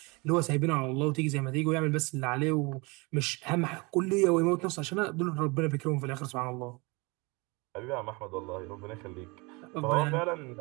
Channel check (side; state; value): left; quieter; 27.1 dB